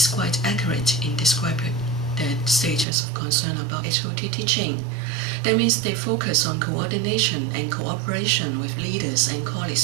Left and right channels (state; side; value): drops out; left; at 2.9 s